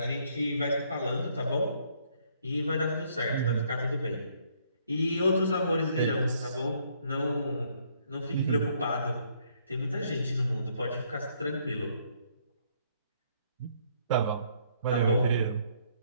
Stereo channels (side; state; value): both; inverted; correlation -0.68